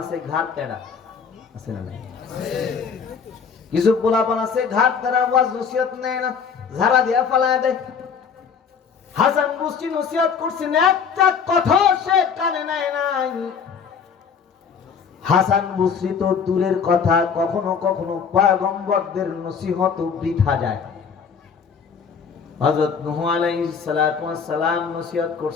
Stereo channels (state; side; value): quieter; right; 6.4 dB